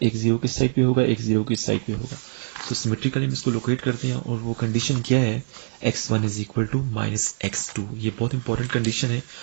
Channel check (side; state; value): left; silent; 63 dB below the other